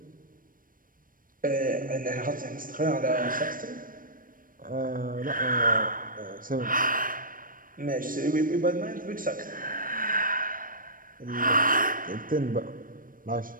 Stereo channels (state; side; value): late; left; 0.40 ms